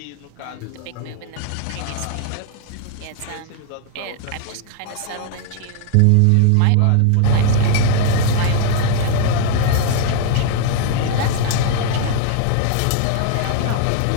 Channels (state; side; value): different; both; correlation 0.00